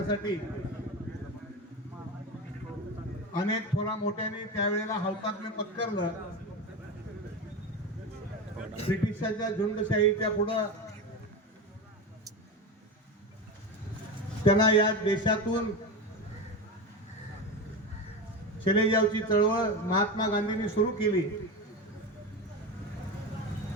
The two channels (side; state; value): both; normal; correlation 0.22